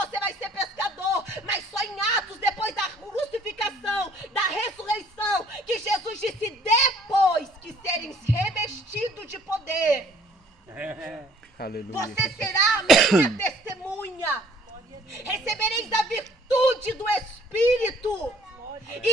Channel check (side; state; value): both; normal; correlation 0.58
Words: vai ser pescador. Mas só em Atos, depois da crucificação, da ressurreição, que Jesus disse: depois que serem revestidos de poder, você será a minha testemunha. Recebereis a virtude do Espírito